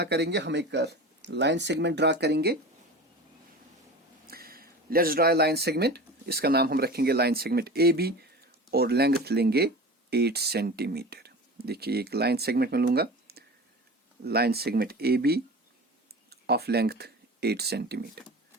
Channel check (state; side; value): normal; both; correlation 0.33